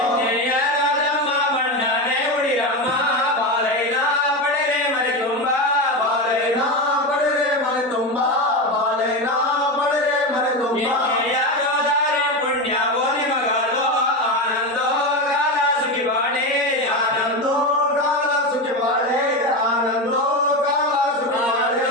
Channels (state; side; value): normal; both; correlation 0.17